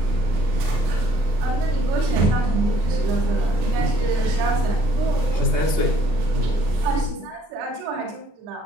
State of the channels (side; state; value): left; late; 24 ms